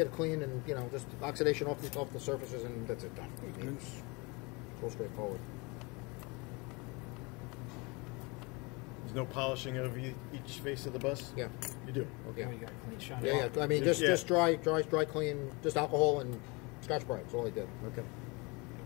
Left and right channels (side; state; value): right; quieter; 27.7 dB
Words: clean and just oxidation off the surfaces and that's it done. It's so straightforward. There's no polishing of each face of the bus? Yeah. You do? Okay. Oh, you got a clean shot. Yeah. I mean, just dry clean, just alcohol and Scotch Brite. That's all I did. Okay.